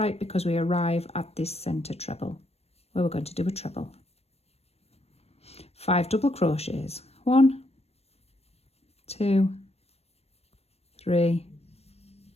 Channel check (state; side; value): late; right; 0.30 ms